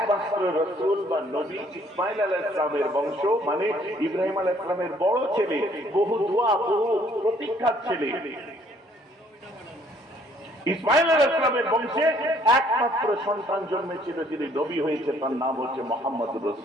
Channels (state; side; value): normal; both; correlation 0.62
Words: রাসূল বা নবী ইসমাঈল আলাইহিস সালামের বংশ, মানে ইব্রাহিম আলাইহিস সালামের বড় ছেলে, বহু দোয়া, বহু প্রতীক্ষার ছেলে। ইসমাঈল আলাইহিস সালামের বংশে একমাত্র সন্তান জন্মেছিল, যিনি নবী হয়েছে, তার নাম হচ্ছে মুহাম্মদুর